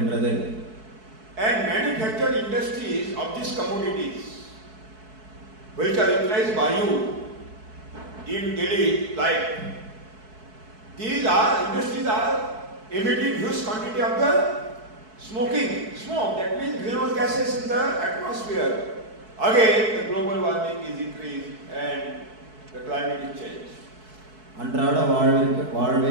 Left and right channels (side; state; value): left; late; 4.6 ms